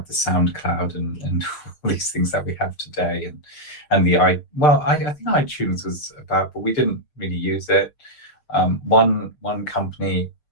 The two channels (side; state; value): right; late; 6.5 ms